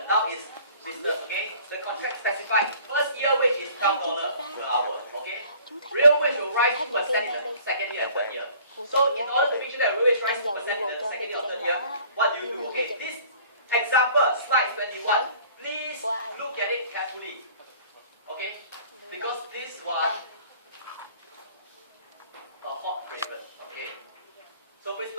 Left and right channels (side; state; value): both; inverted; correlation -0.51